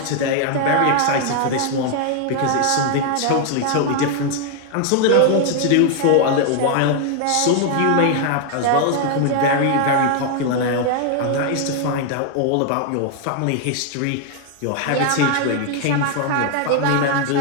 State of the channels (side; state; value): both; different; correlation 0.00